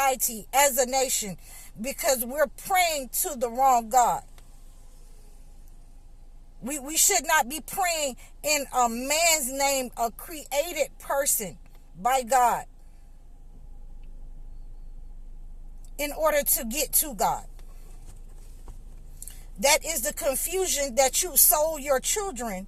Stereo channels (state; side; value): identical; both; correlation 1.00